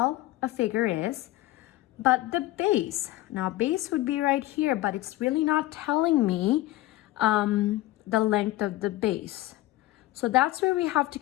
a figure is. But the base, now base would be right here, but it's really not telling me the length of the base. So that's where we have to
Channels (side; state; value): right; quieter; 17.2 dB